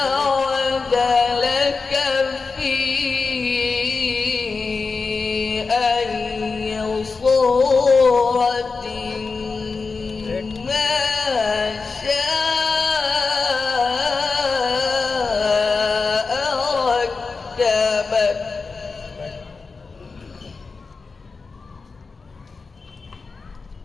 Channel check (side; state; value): right; quieter; 4.4 dB